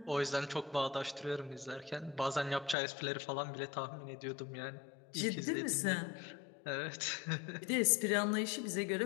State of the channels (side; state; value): right; drops out; at 2.8 s